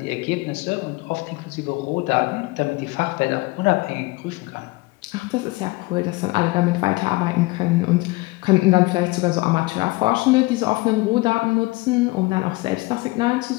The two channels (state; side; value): quieter; right; 22.8 dB